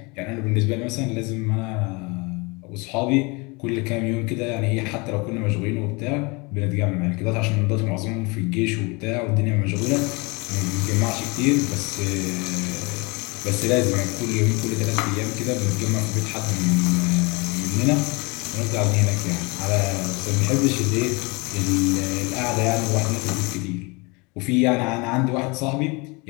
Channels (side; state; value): right; quieter; 27.8 dB